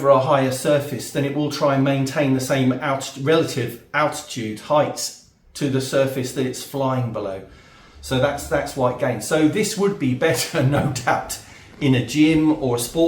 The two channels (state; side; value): identical; both; correlation 1.00